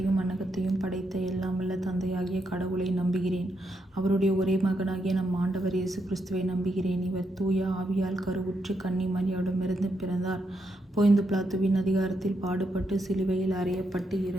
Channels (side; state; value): both; normal; correlation 0.80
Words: மண்ணகத்தையும் படைத்த எல்லாம் வல்ல தந்தையாகிய கடவுளை நம்புகிறேன். அவருடைய ஒரே மகனாகிய நம் ஆண்டவர் இயேசு கிறிஸ்துவை நம்புகிறேன். இவர் தூய ஆவியால் கருவுற்று கன்னி மரியாவிடமிருந்து பிறந்தார். போய்ந்து பிலாத்துவின் அதிகாரத்தில் பாடுபட்டு சிலுவையில் அறையப்பட்டு